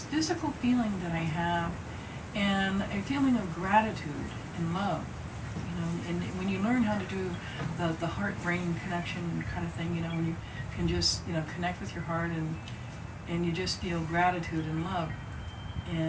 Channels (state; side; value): identical; both; correlation 1.00